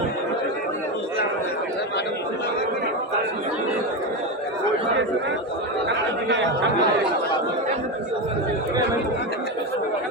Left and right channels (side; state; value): both; normal; correlation 0.15